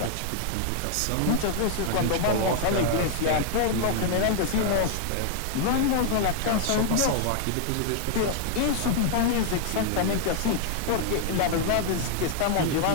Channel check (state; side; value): different; both; correlation 0.00